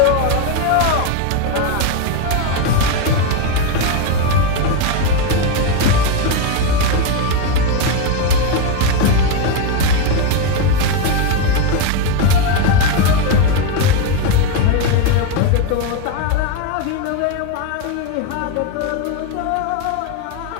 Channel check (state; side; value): different; both; correlation 0.02